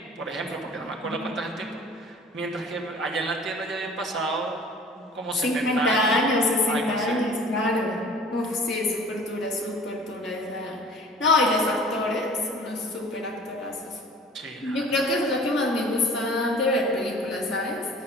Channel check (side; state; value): both; normal; correlation 0.47